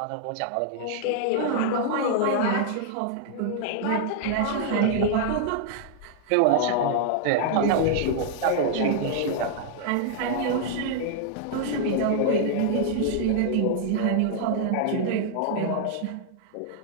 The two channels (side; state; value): both; different; correlation -0.01